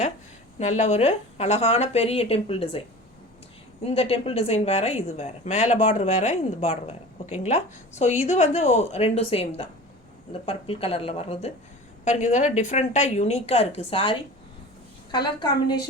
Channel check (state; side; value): normal; both; correlation 0.37